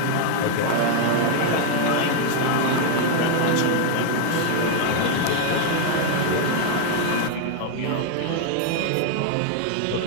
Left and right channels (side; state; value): both; different; correlation 0.00